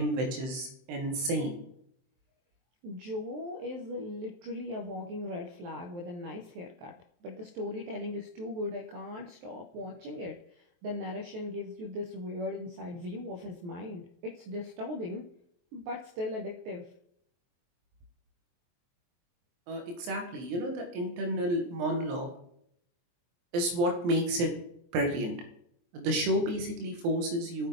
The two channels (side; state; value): left; late; 23 ms